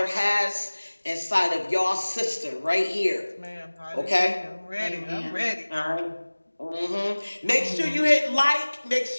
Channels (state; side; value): inverted; both; correlation -1.00